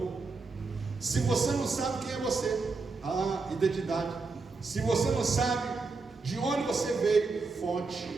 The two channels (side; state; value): left; quieter; 4.1 dB